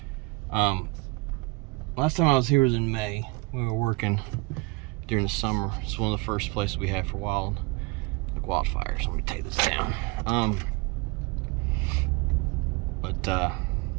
Last time I was here was in May. We were working during the summer. It's one of the first places we had for wildfires. Let me take this down.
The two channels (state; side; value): quieter; left; 25.8 dB